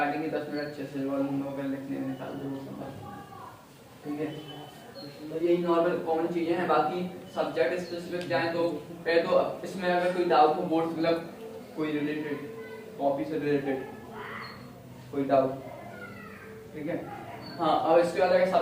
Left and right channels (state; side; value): identical; both; correlation 1.00